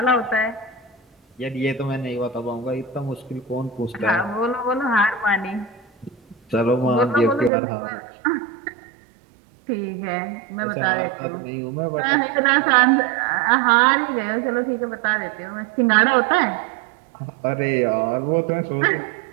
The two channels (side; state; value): left; drops out; at 7.5 s